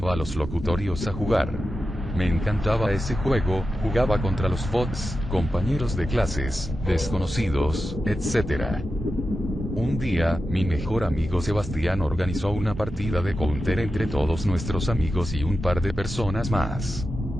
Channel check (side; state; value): both; normal; correlation 0.91